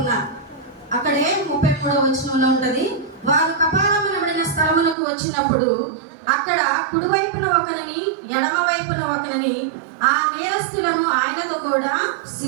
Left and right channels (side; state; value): left; drops out; at 5.0 s